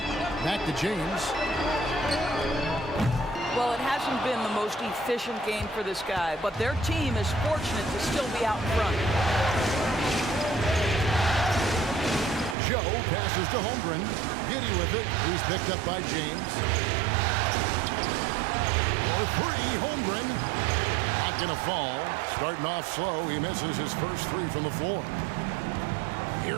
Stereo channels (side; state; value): left; drops out; at 12.6 s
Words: Back to James. Well, it hasn't been the most efficient game for this guy, but their team is fortunate to still be out in front. Joe passes to Holmgren. Giddey with it. He's picked up by James. For 3, Holmgren. Not going to fall. Starting off slow. He misses his first 3 from the floor.